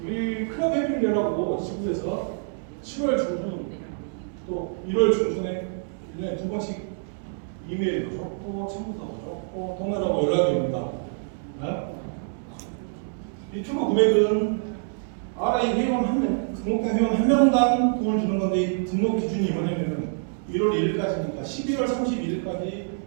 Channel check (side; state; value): left; silent; digital silence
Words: 우리 클럽 해피리라고 지구에서 7월 중순 또 1월 중순에 1년에 두 번씩 이메일도 줬고 친구도 줬고 통화라고 연락이 옵니다. 이 추가 금액은 RI 회원 한 명, 등록된 회원 한 명당 돈을 주는 건데 이 등록 기준이 뭐냐면은 1월 1일까지니까 11월 31일까지